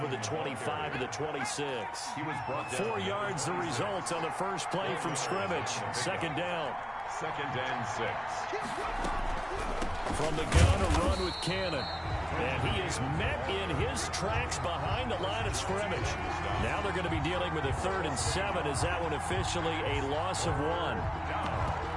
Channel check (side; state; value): both; identical; correlation 1.00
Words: the 25 to the 26. He was brought down. 4 yards the result on the first play from scrimmage. 2nd down. 2nd and 6. From the gun, a run with Cannon. And he is met in his tracks behind the line of scrimmage. Now they're going to be dealing with a 3rd and 7. Is that one officially a loss of 1?